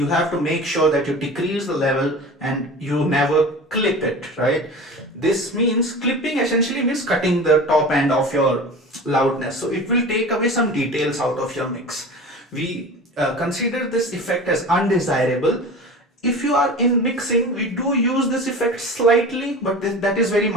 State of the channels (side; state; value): both; normal; correlation 0.35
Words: have to make sure that you decrease the level and you never clip it, right? This means clipping essentially means cutting the top end of your loudness. So it will take away some details out of your mix. We consider this effect as undesirable. If you are in mixing, we do use this effect slightly, but that is very